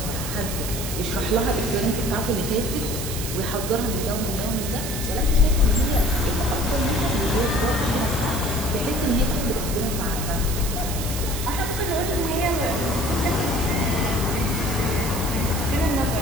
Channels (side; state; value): right; noise; hiss, 6 dB below the sound